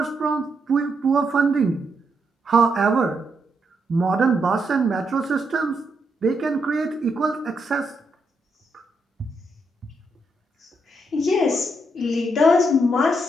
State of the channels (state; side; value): normal; both; correlation 0.79